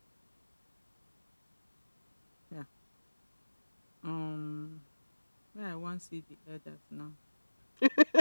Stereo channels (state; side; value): inverted; both; correlation -1.00